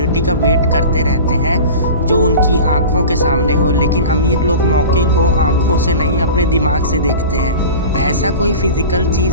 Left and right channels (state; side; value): inverted; both; correlation -0.36